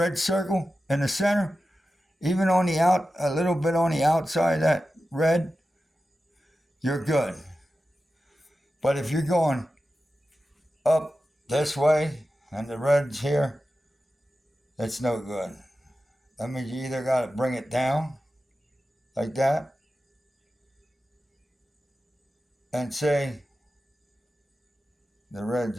circle in the center, even on the a little bit on the outside of that red, you're good. But if you're going up this way and the red's here, it's no good. That means you either got to bring it down like that and say the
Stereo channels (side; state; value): both; normal; correlation 0.93